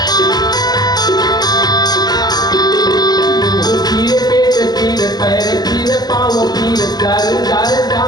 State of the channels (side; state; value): right; late; 0.19 ms